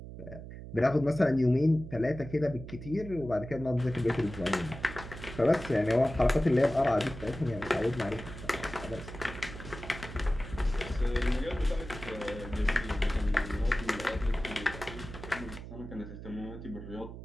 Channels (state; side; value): noise; right; hum, 12 dB below the sound